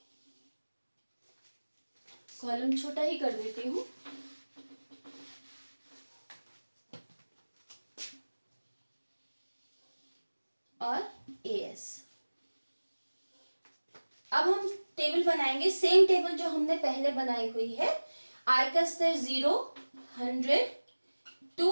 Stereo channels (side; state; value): both; inverted; correlation -1.00